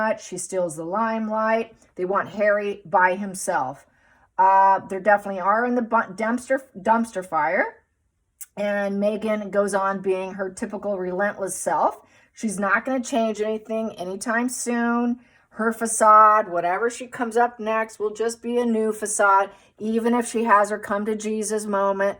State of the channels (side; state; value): both; identical; correlation 1.00